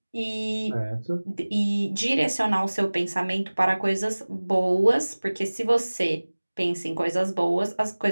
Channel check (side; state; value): both; inverted; correlation -1.00